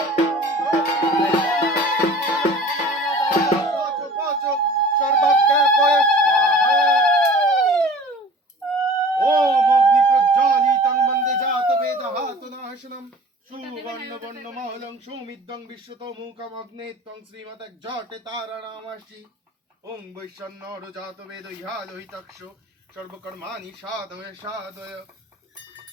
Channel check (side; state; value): both; normal; correlation 0.44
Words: সর্বজ্ঞাপয় স্বাহা ওম অগ্নি প্রজ্বালিতং বন্দে জাতবেদহাতুনাশনম সুবর্ণবর্ণমহলং সুমিদ্যং বিশ্বতমুখম অগ্নে ত্বং শ্রীমতজ্জটে তারানামাসি ওং বৈশ্বন্নর জাতবেদ ইহালোহিতক্ষ সর্বকর্মাণি সাধয় সাধয়